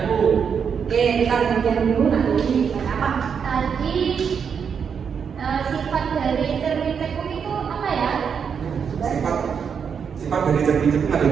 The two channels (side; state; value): left; quieter; 6.8 dB